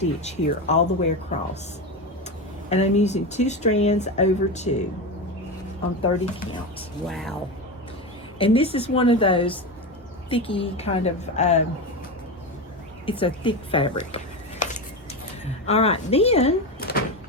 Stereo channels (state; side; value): normal; both; correlation 0.19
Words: here all the way across. And I'm using 2 strands over 2 on 30 count. Wow. And this is one of those thicky kind of, it's a thick fabric. All right, then